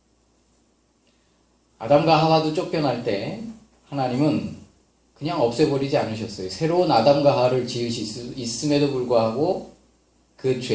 아담과 하와도 쫓겨날 때 하나님은 그냥 없애버리지 않으셨어요. 새로운 아담과 하와를 지으실 수 있음에도 불구하고 그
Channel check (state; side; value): identical; both; correlation 1.00